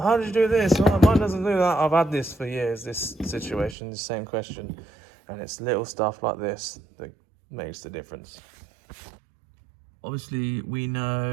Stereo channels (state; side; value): drops out; left; at 3.8 s